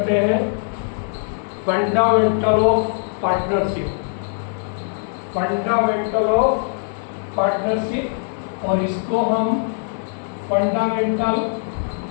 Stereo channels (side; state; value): right; silent; digital silence